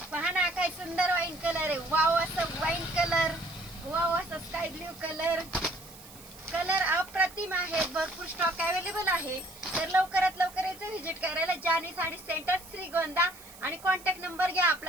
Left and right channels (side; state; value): right; noise; hiss, 19 dB below the sound